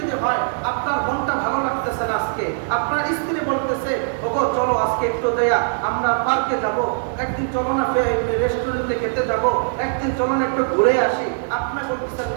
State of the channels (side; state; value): left; silent; 56 dB below the other